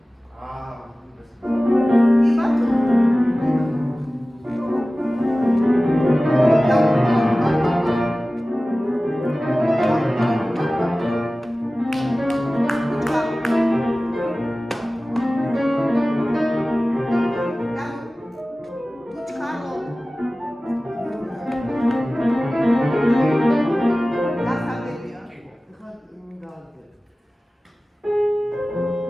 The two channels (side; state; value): both; normal; correlation 0.97